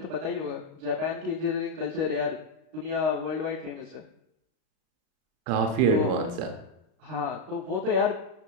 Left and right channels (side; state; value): left; late; 35 ms